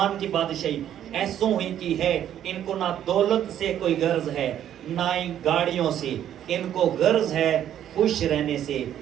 کی بادشاہی ایسوں ہی کی ہے، ان کو نہ دولت سے کوئی غرض ہے نہ ہی گاڑیوں سے، ان کو غرض ہے خوش رہنے سے۔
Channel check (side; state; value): left; quieter; 10.7 dB